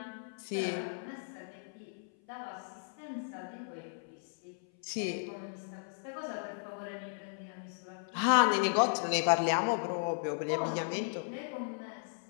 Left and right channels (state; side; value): silent; right; 54 dB below the other